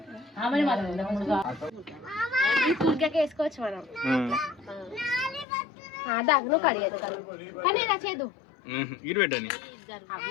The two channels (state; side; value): drops out; right; at 5.5 s